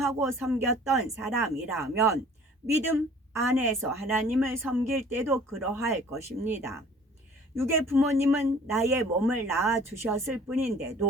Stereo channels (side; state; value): both; normal; correlation 0.51